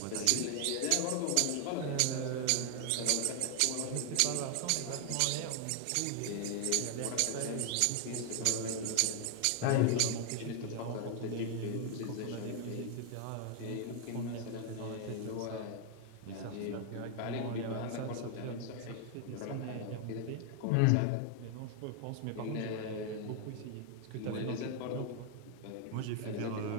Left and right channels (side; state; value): both; different; correlation 0.00